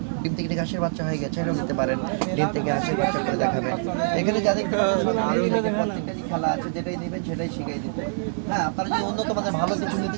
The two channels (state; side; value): silent; left; digital silence